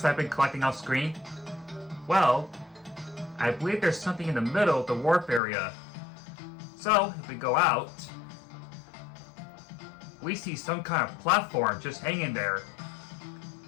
I've been collecting off screen? Well, I believe there's something in the middle of the warp area. So, if we go out, we see some kind of platform just hanging there.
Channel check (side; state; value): right; drops out; at 5.4 s